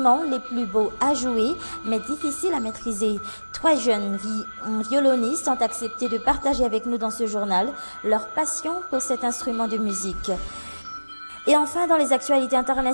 les plus beaux à jouer, mais difficile à maîtriser. 3 jeunes violonistes ont accepté de partager avec nous dans ce journal leur passion pour cet instrument de musique. Et enfin, dans les actualités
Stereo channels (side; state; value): both; inverted; correlation -1.00